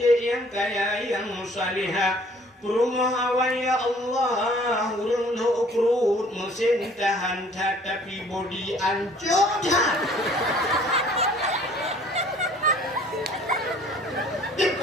yang kaya, yang salihah. Rumah awan ya Allah, urung lo ukrut mesin tahan tapi body ancur.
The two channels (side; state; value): both; normal; correlation 0.55